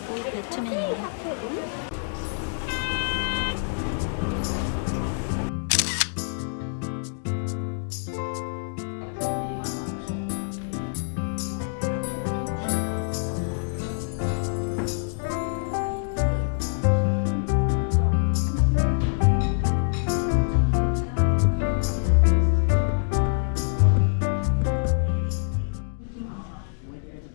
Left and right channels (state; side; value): silent; right; digital silence